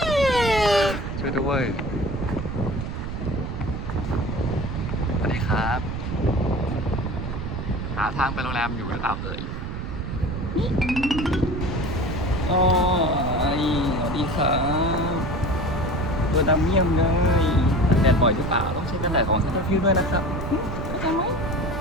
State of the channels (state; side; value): noise; right; rumble, 5 dB below the sound